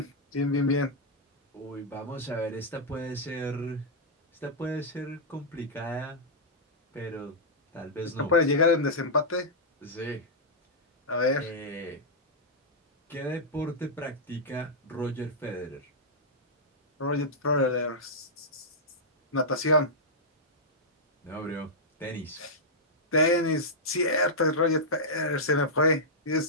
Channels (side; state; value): both; normal; correlation -0.09